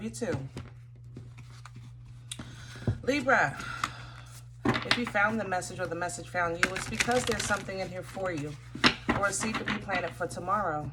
you too. Libra, if you found the message or the message found you, it's because there's something in here for you, or a seed to be planted for tomorrow.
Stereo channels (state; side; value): identical; both; correlation 1.00